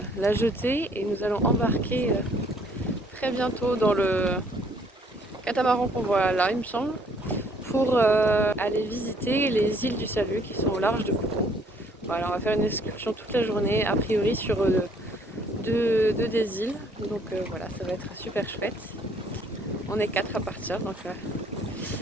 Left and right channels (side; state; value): both; normal; correlation 0.63